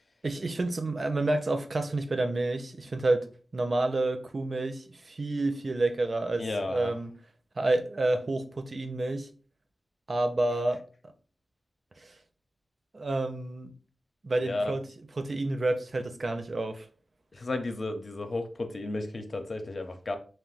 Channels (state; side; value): normal; both; correlation 0.95